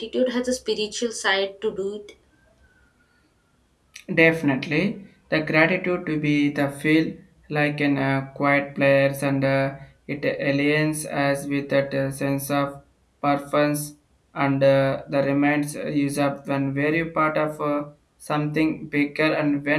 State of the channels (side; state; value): both; identical; correlation 1.00